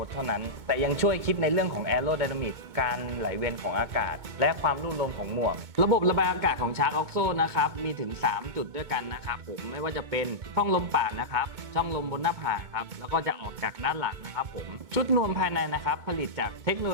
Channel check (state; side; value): late; left; 2.2 ms